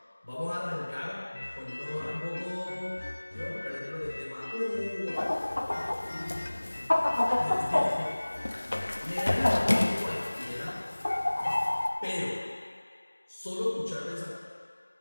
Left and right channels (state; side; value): inverted; both; correlation -1.00